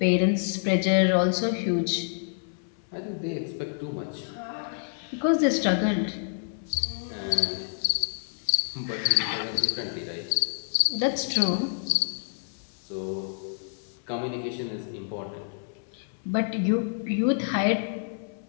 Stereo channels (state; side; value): silent; right; 59 dB below the other